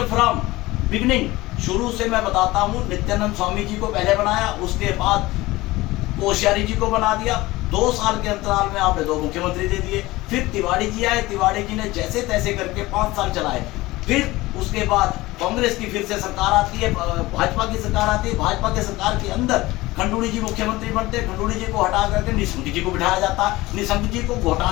फ्रॉम बिगनिंग, शुरू से मैं बताता हूँ, नित्यानंद स्वामी जी को पहले बनाया, उसके बाद कोश्यारी जी को बना दिया। 2 साल के अंतराल में आपने 2 मुख्यमंत्री दे दिए। फिर तिवारी जी आए, तिवारी जी ने जैसे तैसे करके 5 साल चलाए। फिर उसके बाद कांग्रेस की फिर से सरकार आती है, भाजपा की सरकार आती है। भाजपा के सरकार के अंदर खंडूड़ी जी मुख्यमंत्री बनते, खंडूड़ी जी को हटा करके निशंक जी को बिठाया जाता। निशंक जी को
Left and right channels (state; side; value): quieter; right; 19.4 dB